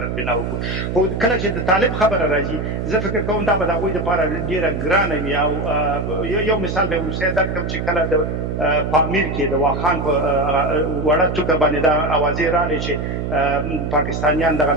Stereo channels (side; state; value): right; noise; hum, 3 dB below the sound